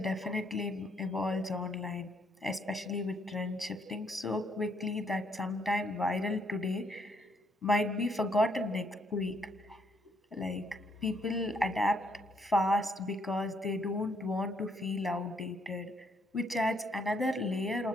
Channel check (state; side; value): normal; both; correlation 0.71